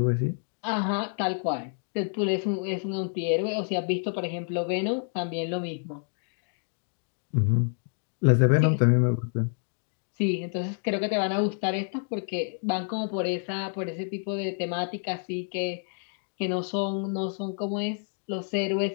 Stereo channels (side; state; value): right; silent; 59 dB below the other